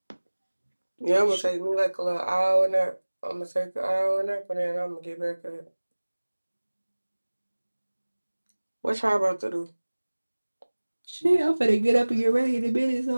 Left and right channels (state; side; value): inverted; both; correlation -1.00